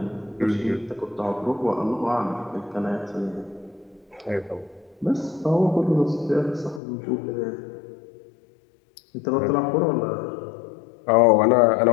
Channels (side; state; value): right; drops out; at 6.8 s